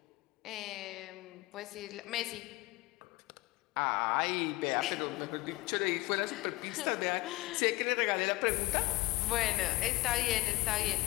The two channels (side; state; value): right; quieter; 20.6 dB